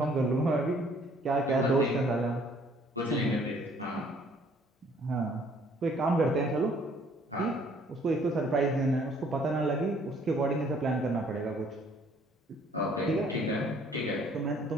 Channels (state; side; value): normal; both; correlation 0.60